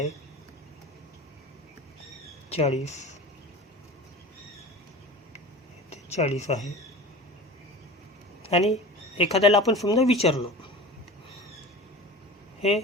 40 आहे. आणि एखाद्याला आपण समजा विचारलं, हे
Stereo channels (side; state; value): both; normal; correlation 0.35